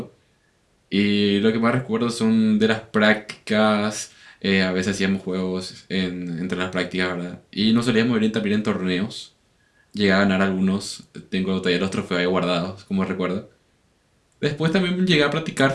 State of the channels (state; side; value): identical; both; correlation 1.00